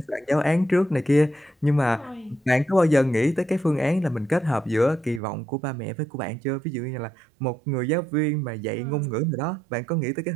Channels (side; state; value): left; drops out; at 5.2 s